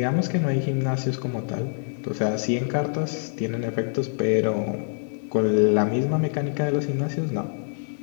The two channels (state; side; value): silent; right; digital silence